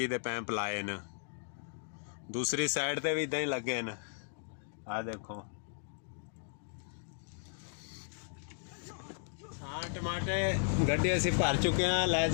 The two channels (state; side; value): silent; right; digital silence